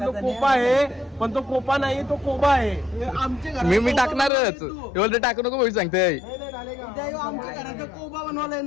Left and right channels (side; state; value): right; drops out; at 4.3 s